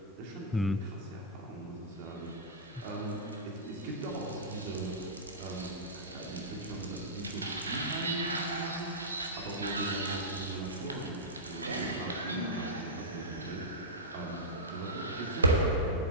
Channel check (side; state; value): both; normal; correlation -0.13